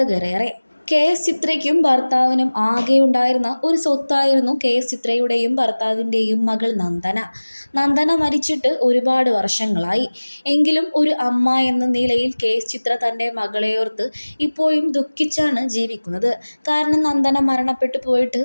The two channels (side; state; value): both; inverted; correlation -1.00